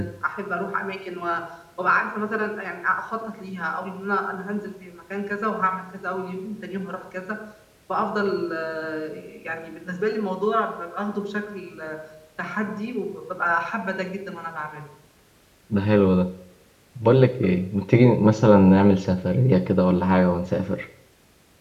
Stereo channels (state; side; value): identical; both; correlation 1.00